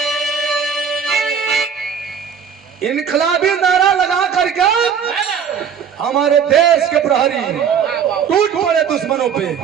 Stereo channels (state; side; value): quieter; left; 7.4 dB